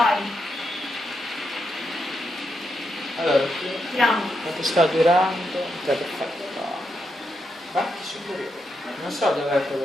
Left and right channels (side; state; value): both; normal; correlation 0.83